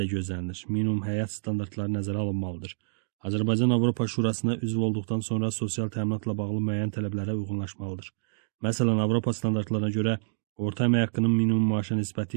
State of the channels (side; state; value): left; silent; digital silence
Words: gözlənilir. Minimum həyat standartları nəzərə alınmalıdır. Azərbaycan Avropa Şurasına üzv olduqdan sonra sosial təminatla bağlı müəyyən tələblərə uyğunlaşmalıdır. Məsələn, Avropa standartlarına görə orta əmək haqqının minimum maaşa